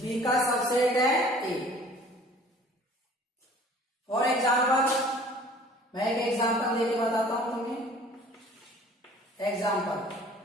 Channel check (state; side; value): normal; both; correlation 0.50